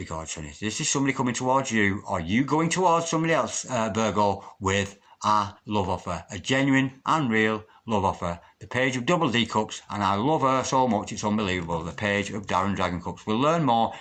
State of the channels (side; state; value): both; identical; correlation 1.00